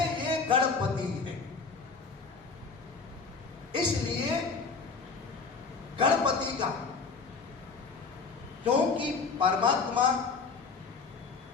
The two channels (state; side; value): quieter; right; 4.8 dB